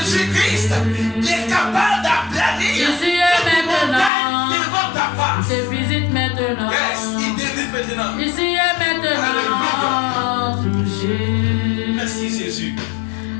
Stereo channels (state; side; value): drops out; right; at 4.1 s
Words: Jésus-Christ qui est capable d'aplanir Ici et maintenant. devant ta face. Il te visite maintenant. Yes, il te visite maintenant. Ici et maintenant. Touché. Merci Jésus.